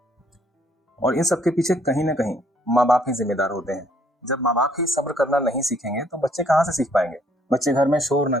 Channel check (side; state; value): both; normal; correlation 0.66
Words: और इन सब के पीछे कहीं ना कहीं माँ बाप ही जिम्मेदार होते हैं। जब माँ बाप ही सब्र करना नहीं सीखेंगे तो बच्चे कहाँ से सीख पाएंगे। बच्चे घर में शोर ना